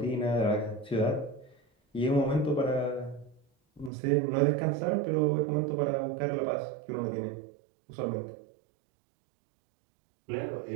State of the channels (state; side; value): drops out; left; at 3.9 s